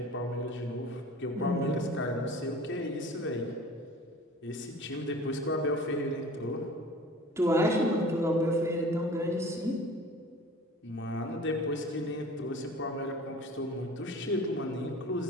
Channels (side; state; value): both; normal; correlation 0.43